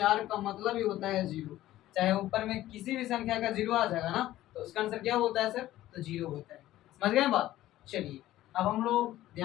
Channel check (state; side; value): quieter; right; 14.7 dB